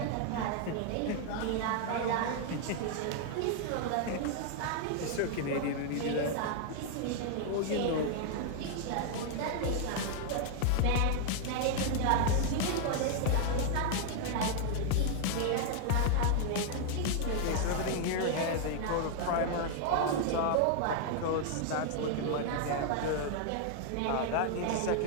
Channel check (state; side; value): different; both; correlation 0.00